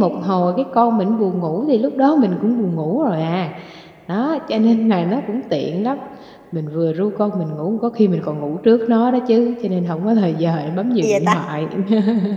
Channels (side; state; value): both; identical; correlation 1.00